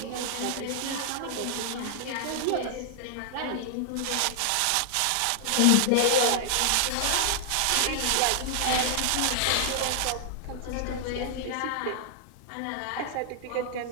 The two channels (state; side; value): different; both; correlation -0.01